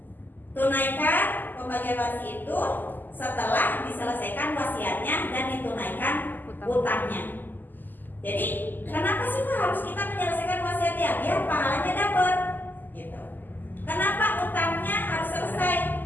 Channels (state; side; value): late; right; 0.088 ms